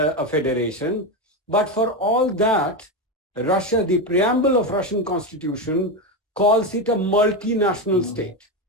federation. But for all that, Russia, the preamble of Russian constitution calls it a multinational state.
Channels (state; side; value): normal; both; correlation 0.13